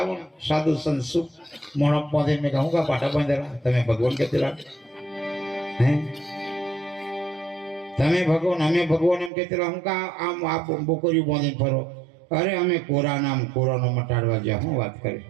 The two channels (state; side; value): drops out; left; at 9.3 s